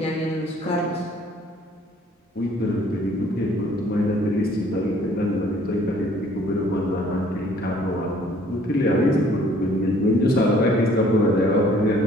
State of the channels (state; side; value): normal; both; correlation 0.58